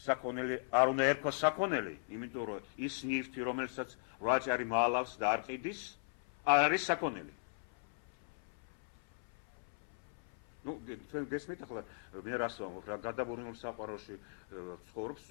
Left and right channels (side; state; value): right; silent; 52 dB below the other